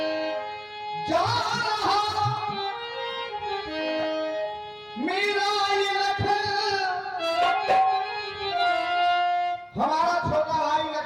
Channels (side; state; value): both; identical; correlation 1.00